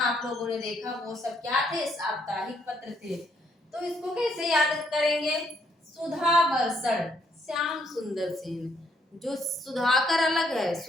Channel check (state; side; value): normal; both; correlation 0.72